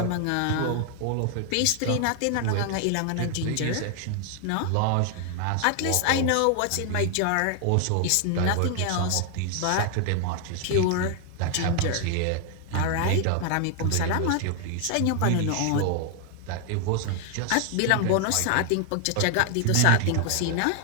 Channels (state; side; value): different; both; correlation 0.00